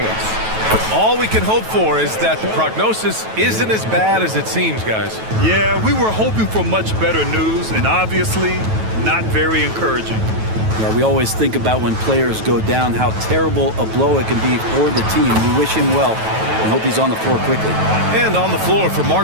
All we can hope for is that the prognosis isn't as bad as it seems, guys. Yeah, we were hoping for much better news, and obviously not very encouraging. Yeah, we always think about when players go down, how terrible a blow it can be for the team. We wish him well and hope he's on the floor quickly. And on the floor for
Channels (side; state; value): left; late; 9.2 ms